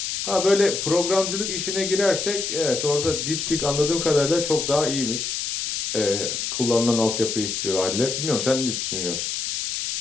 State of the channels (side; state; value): left; noise; hiss, 3 dB below the sound